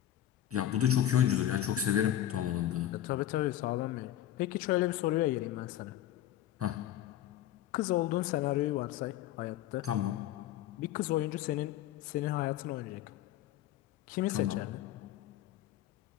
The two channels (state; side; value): quieter; right; 12.3 dB